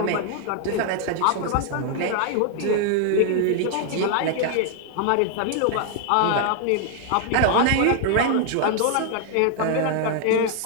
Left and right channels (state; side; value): different; both; correlation 0.00